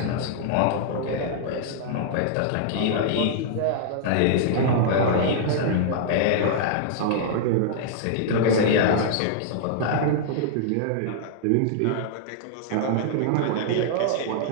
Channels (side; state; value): both; different; correlation -0.01